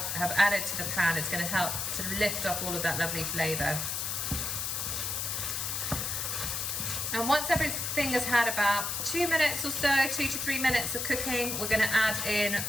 added to the pan, it's going to help sort of lift off all of that lovely flavour. And once everything has had about 2 minutes or so, 2 to 3 minutes of cooking, we're going to add in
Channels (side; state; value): left; noise; hiss, 2 dB below the sound